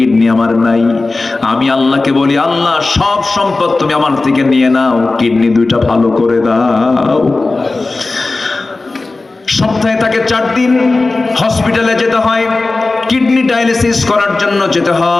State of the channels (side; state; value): right; quieter; 3.4 dB